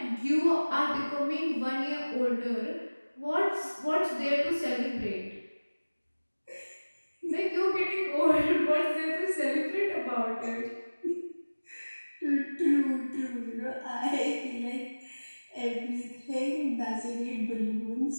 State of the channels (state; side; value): inverted; both; correlation -1.00